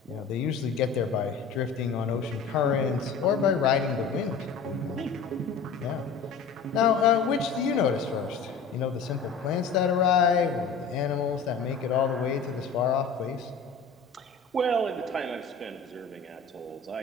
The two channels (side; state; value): right; quieter; 5.3 dB